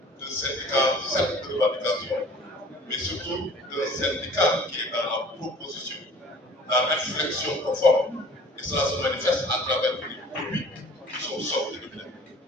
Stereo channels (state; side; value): normal; both; correlation 0.48